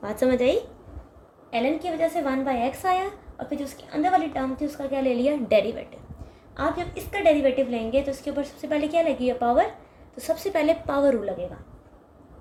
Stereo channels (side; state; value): both; identical; correlation 1.00